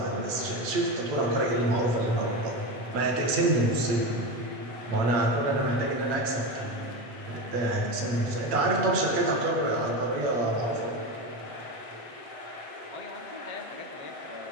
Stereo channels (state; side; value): late; left; 8.6 ms